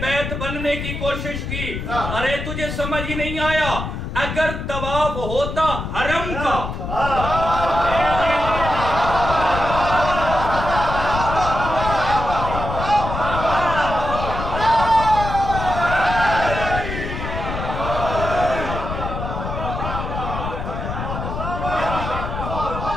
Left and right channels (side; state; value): left; noise; rumble, 5 dB below the sound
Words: بیت بننے کی کوشش کی۔ ارے تجھے سمجھ ہی نہیں آیا، اگر طواف ہوتا حرم کا